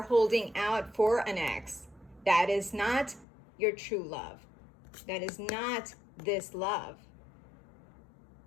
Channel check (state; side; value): drops out; right; at 3.2 s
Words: holding out for an ex, that is not your true love. That is not this love.